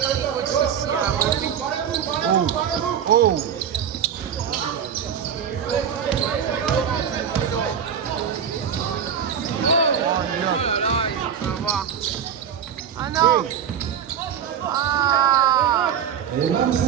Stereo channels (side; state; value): left; quieter; 8.3 dB